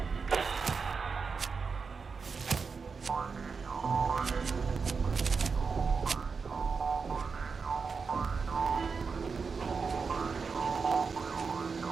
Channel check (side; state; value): left; quieter; 5.1 dB